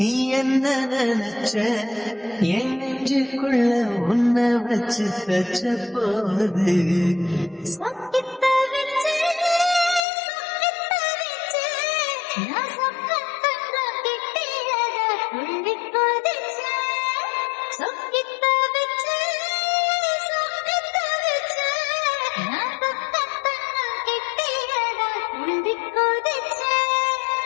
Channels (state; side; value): drops out; right; at 10.1 s